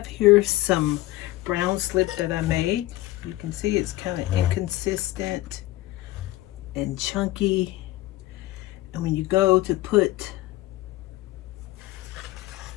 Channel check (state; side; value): quieter; right; 17.4 dB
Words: here some brown slip that I made. You can see it's kind of inconsistent and chunky. And when you go to put